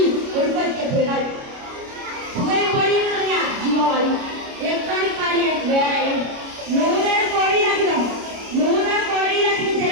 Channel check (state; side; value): late; left; 29 ms